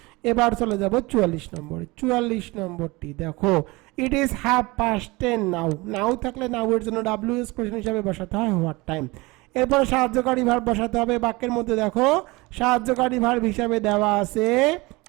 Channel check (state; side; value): quieter; left; 23.2 dB